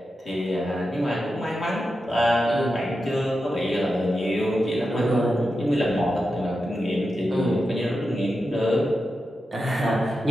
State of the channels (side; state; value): both; normal; correlation 0.89